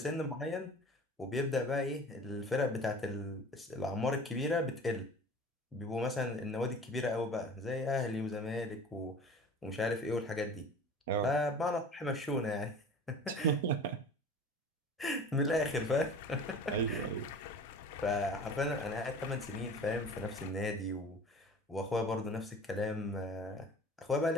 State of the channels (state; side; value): normal; both; correlation 0.41